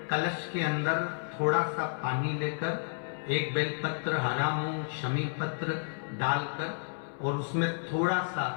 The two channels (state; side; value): silent; right; digital silence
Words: कलश के अंदर थोड़ा सा पानी लेकर 1 बेलपत्र, हरा मूंग, शमी पत्र डालकर और उसमें थोड़ा सा